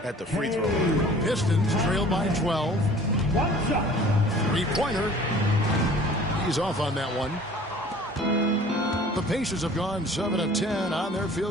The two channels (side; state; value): both; normal; correlation 0.48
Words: at the free throw line. Pistons trail by 12. Three-pointer. He's off on that one. The Pacers have gone 7 of 10 on their